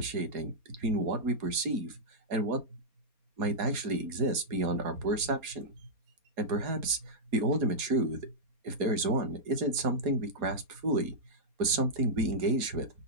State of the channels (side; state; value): left; late; 4.3 ms